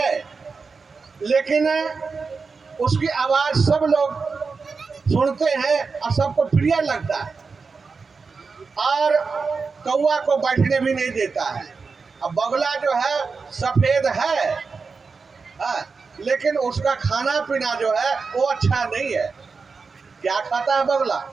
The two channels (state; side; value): quieter; left; 4.7 dB